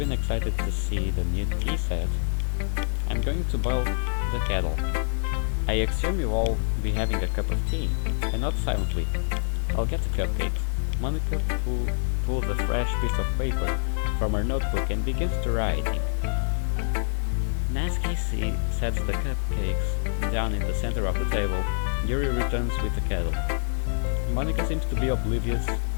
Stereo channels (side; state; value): right; silent; 59 dB below the other